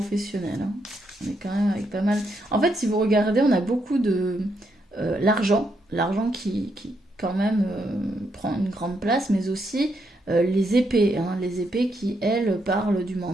On est quand même avec pas mal... En fait, si vous regardez, on a beaucoup de... l'argent. L'argent qui quand même prend une grande place, mais aussi les épées. Les épées qui, elles, parlent du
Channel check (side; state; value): both; normal; correlation 0.78